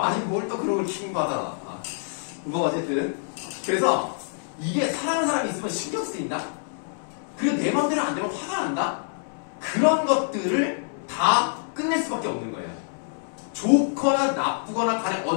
뭘 또 그런 걸 킹받아. 뭐 어쨌든 그래서 이게 사랑하는 사람이 있으면 신경 쓰인다? 그리고 내 맘대로 안 되면 화가 난다? 그런 것들을 다 끝낼 수밖에 없는 거예요. 좋거나 나쁘거나 간에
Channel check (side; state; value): right; silent; 61 dB below the other